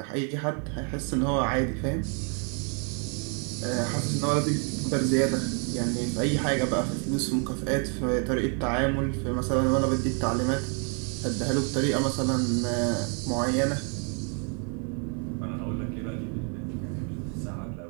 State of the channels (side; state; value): left; quieter; 39.7 dB